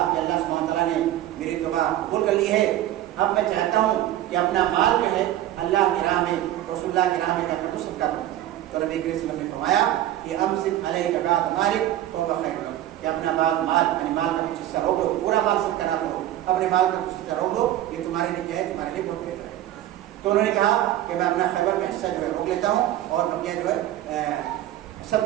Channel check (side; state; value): left; quieter; 13.2 dB